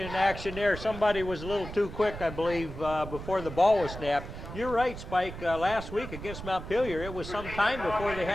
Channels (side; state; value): right; noise; rumble, 10 dB below the sound